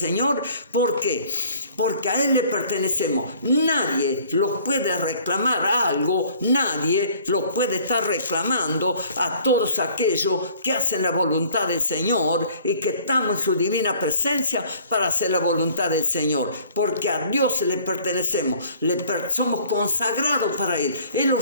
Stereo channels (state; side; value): inverted; both; correlation -0.54